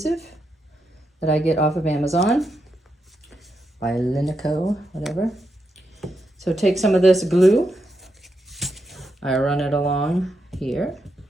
that I get off of Amazon by Linico, whatever. So take some of this glue, I run it along here.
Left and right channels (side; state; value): both; normal; correlation 0.84